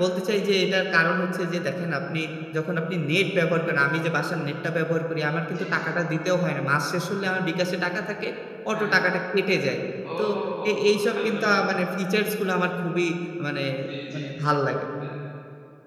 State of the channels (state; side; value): identical; both; correlation 1.00